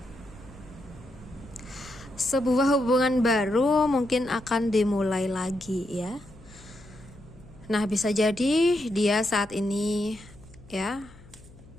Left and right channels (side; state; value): left; noise; hum, 22 dB below the sound